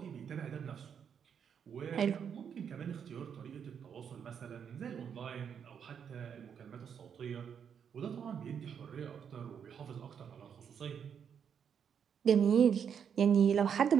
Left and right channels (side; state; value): left; quieter; 7.6 dB